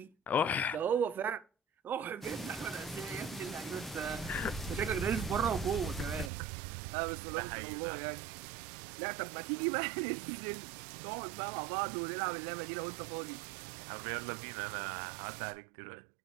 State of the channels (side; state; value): left; drops out; at 6.3 s